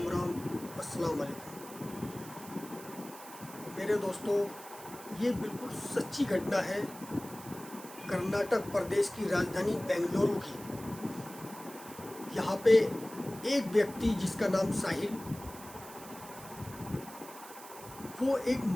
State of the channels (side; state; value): right; noise; hiss, 16 dB below the sound